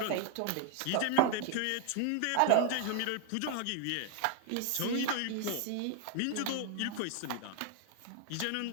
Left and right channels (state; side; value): different; both; correlation 0.00